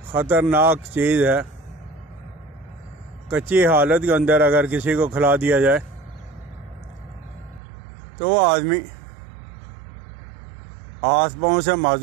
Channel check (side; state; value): left; drops out; at 7.6 s